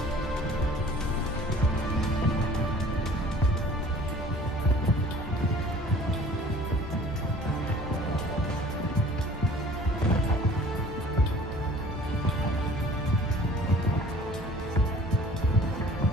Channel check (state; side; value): normal; both; correlation 0.49